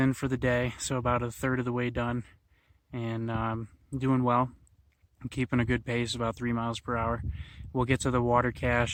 for the day, so about a third of the way done, and doing well. I'm keeping a good pace, about 3 miles per hour. We'll get to the water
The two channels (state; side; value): identical; both; correlation 1.00